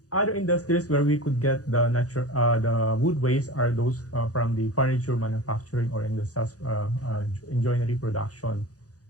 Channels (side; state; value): right; late; 0.67 ms